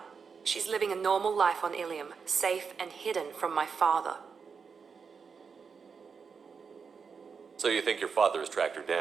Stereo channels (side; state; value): left; quieter; 5.7 dB